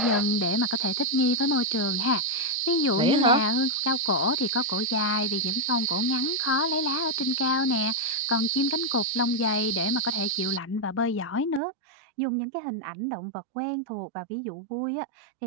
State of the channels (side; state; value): left; drops out; at 11.6 s